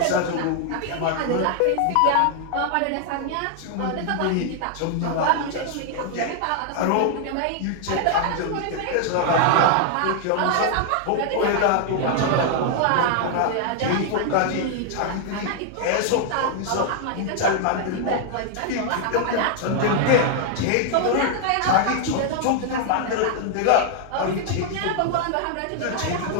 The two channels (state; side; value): different; both; correlation 0.00